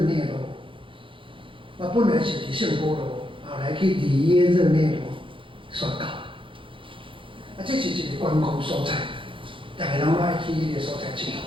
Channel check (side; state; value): left; late; 0.25 ms